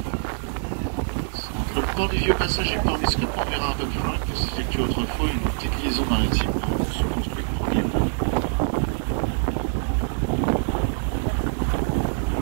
Entre le port du Vieux Passage et Port Biscuit, on verra un peu plus loin que s'effectue autrefois une petite liaison maritime se construite premièrement.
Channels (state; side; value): silent; left; digital silence